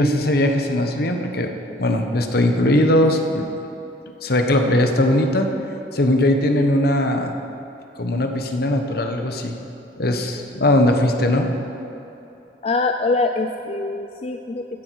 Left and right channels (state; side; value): normal; both; correlation 0.50